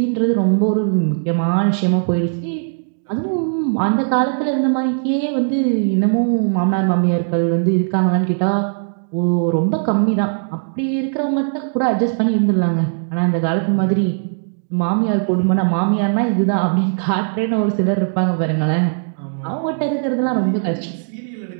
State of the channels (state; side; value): silent; left; digital silence